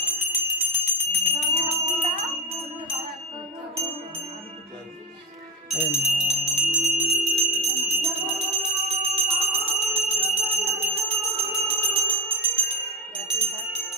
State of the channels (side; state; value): both; normal; correlation 0.19